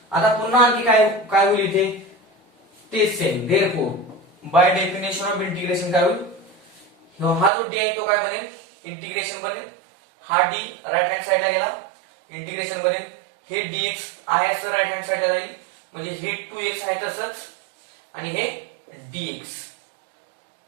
आता पुन्हा आणखी काय होईल इथे? तेच same. Therefore by definition of integration काय होईल? हा जो d आहे तो काय बनेल? इंटिग्रेशन बनेल. हा d राईट हँड साइडला गेला, इंटिग्रेशन बनेल. हे dx आहे असं राईट हँड साइडला जाईल, म्हणजे हे 2x आहे तसंच आणि हे dx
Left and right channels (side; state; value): left; drops out; at 7.5 s